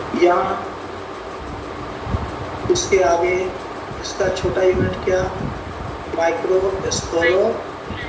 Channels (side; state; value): both; identical; correlation 1.00